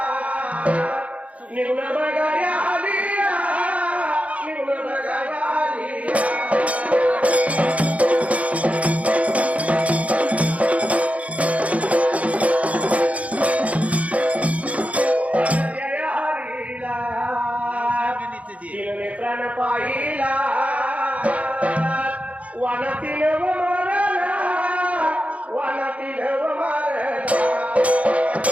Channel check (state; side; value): late; left; 0.066 ms